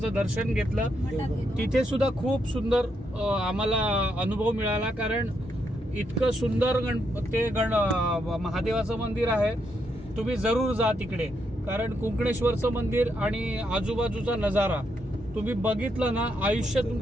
दर्शन घेतलं. तिथे सुद्धा खूप सुंदर आम्हाला अनुभव मिळाला, कारण इतकं सुंदर महादेवाचं मंदिर आहे. तुम्ही जरूर जा तिकडे, कारण कुंकणेश्वरचं मंदिर आणि आजूबाजूचा नजारा तुम्ही बघितलं ना, आयुष्य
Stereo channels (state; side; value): normal; both; correlation 0.79